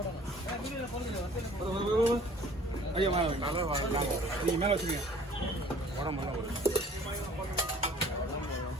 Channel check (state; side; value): normal; both; correlation 0.52